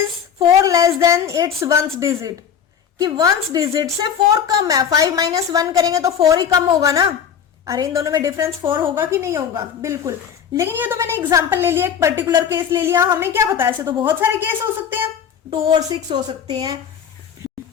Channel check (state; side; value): quieter; right; 8.0 dB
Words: 4 less than it's 1st digit, कि 1st डिजिट से 4 कम है। 5 माइनस 1 करेंगे तो 4 ही कम होगा ना। अरे इन दोनों में डिफरेंस 4 होगा कि नहीं होगा, बिल्कुल। लेकिन ये तो मैंने एग्जांपल ले लिया, एक पर्टिकुलर केस ले लिया, हमें क्या पता, ऐसे तो बहुत सारे केस हो सकते हैं, 2 और 6 हो सकते हैं,